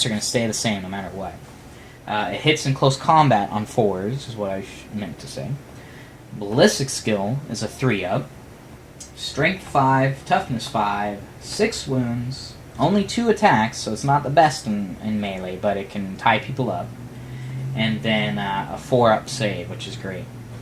are going to stay the same no matter what. It hits in close combat on 4s, is what I meant to say. Ballistic skill is a 3-up. Strength 5, toughness 5, 6 wounds, only 2 attacks, so it's not the best in melee, but it can tie people up. And then a 4-up save, which is great.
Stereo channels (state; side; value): identical; both; correlation 1.00